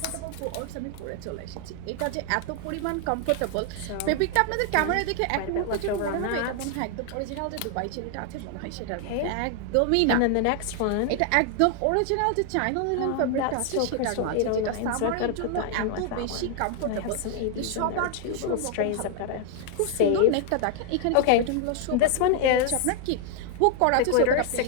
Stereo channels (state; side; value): different; both; correlation 0.00